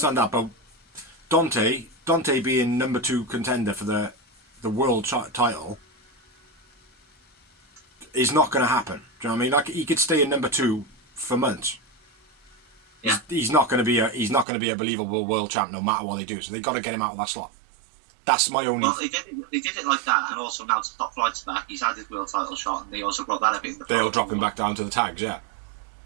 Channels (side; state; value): left; drops out; at 14.5 s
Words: that. But Dante being number 2 contender for the world title is not going to happen. Do you know what I mean? Like, he could stay in number 2 for months. Yeah. He's not going to be a believable world champ no matter what they do. So they've got to get him out of that slot. That's my only. Well, they did it like that, and also now Top Flight's back. He's had his world title shot, and they also brought that up in the. They'll drop him back down to the tags. Yeah.